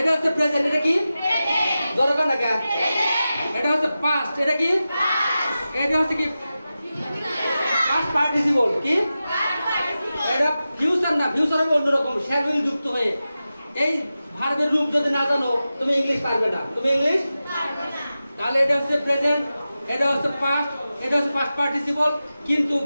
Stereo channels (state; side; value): inverted; both; correlation -0.93